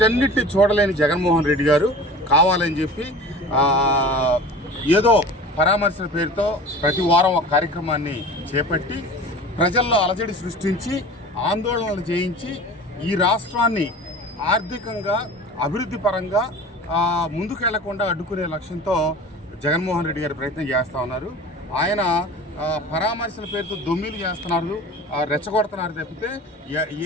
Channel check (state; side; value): normal; both; correlation 0.38